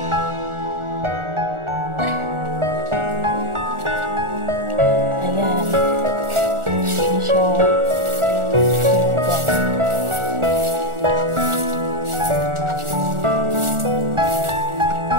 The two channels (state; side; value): late; left; 1.4 ms